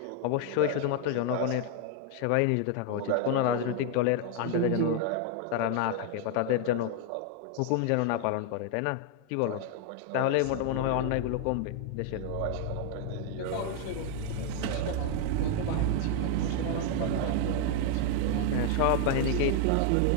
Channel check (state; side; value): different; both; correlation 0.00